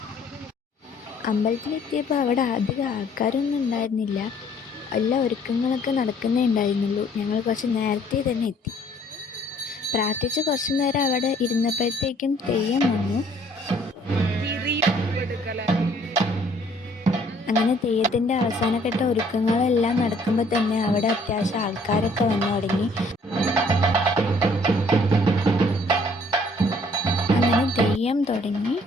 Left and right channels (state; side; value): normal; both; correlation 0.60